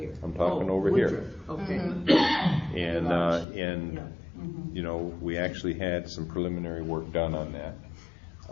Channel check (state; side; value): drops out; right; at 3.5 s